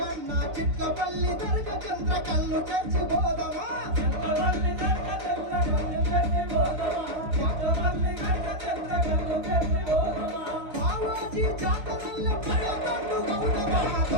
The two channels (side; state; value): left; late; 4.3 ms